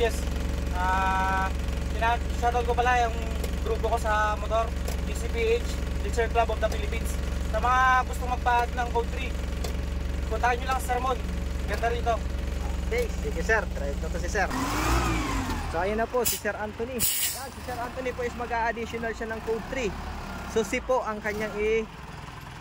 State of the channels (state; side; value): identical; both; correlation 1.00